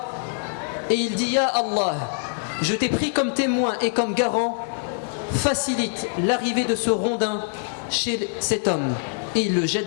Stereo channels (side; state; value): right; silent; 56 dB below the other